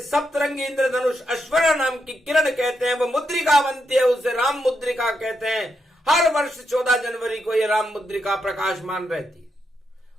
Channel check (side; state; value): both; normal; correlation 0.82